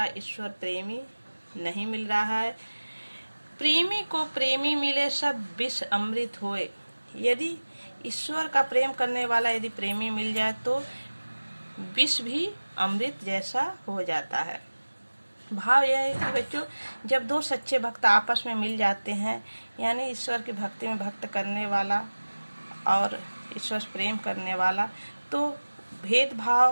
ईश्वर प्रेमी नहीं मिल रहा है। प्रेमी को प्रेमी मिले सब विष अमृत होए। यदि ईश्वर का प्रेम करने वाला यदि प्रेमी मिल जाए तो विष भी अमृत जैसा हो जाता है। भाव यह है कि बच्चों जब दो सच्चे भक्त आपस में मिल जाते हैं, यानी ईश्वर की भक्ति में भक्त करने वाला और ईश्वर प्रेम करने वाला, तो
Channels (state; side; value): inverted; both; correlation -1.00